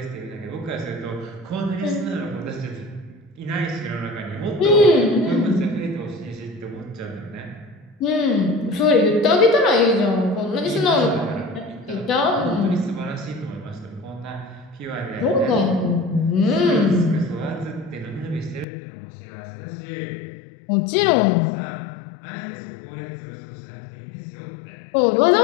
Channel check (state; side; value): drops out; right; at 18.7 s